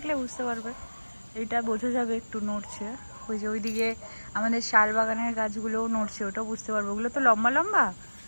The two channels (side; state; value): both; inverted; correlation -1.00